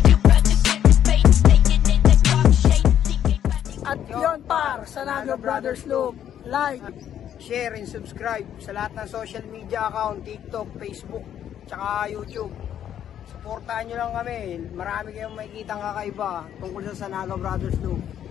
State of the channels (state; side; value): quieter; right; 10.1 dB